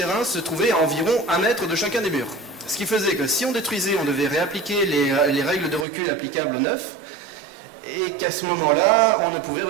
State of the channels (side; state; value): left; drops out; at 5.9 s